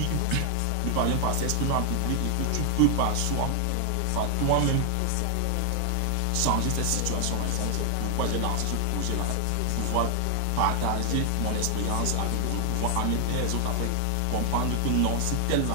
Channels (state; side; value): different; both; correlation 0.00